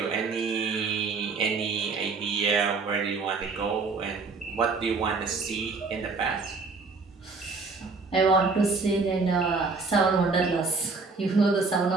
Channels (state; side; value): quieter; left; 4.3 dB